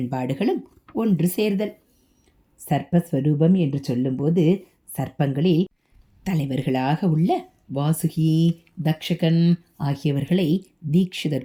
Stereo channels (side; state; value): both; identical; correlation 1.00